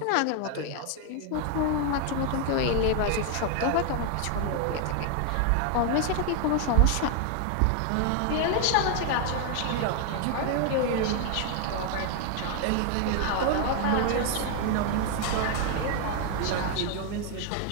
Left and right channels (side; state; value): both; different; correlation 0.00